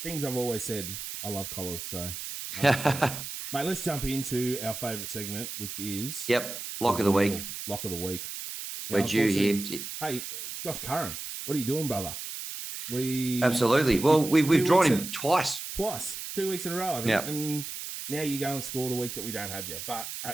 Things I've always said. I love collars. So mate, let's jump into our favourite segment, which is lock of the week. Lock of the week. Now, we're due here. Hey, Josh Curran, what are you doing, brother? Absolutely. Well, we've drawn him twice. 2 weeks in a row, I think. Yep. And now you go and score the week that we don't have you. But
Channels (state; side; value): noise; right; hiss, 7 dB below the sound